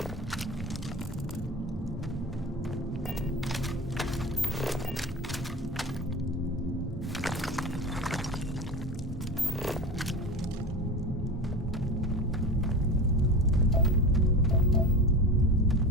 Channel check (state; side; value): normal; both; correlation 0.29